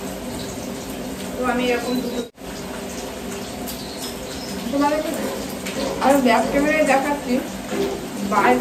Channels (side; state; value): both; identical; correlation 1.00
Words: তো আমি এরকম দুটো তোমাদেরকে আর ব্যাক ক্যামেরায় দেখাচ্ছি,